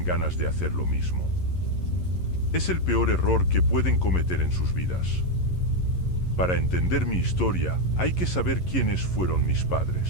ganas de hacer lo mismo. Es el peor error que pueden cometer en sus vidas. Para entender mi historia, hay que saber quiénes fueron mis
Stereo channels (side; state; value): right; late; 11 ms